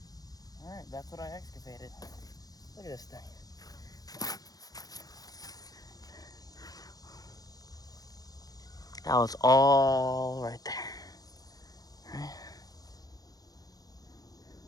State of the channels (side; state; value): right; late; 0.18 ms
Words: Alright, that's what I excavated. Look at this thing. That was all right there. Right?